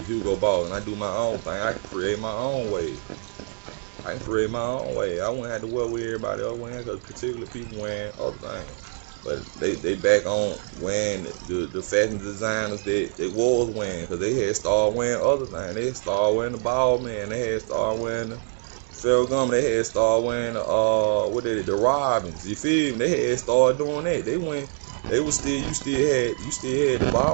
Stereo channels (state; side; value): silent; left; digital silence